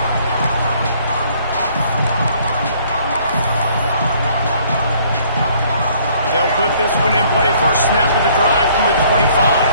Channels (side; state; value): both; inverted; correlation -0.60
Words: They'll put this one in play. First snap of the drive from the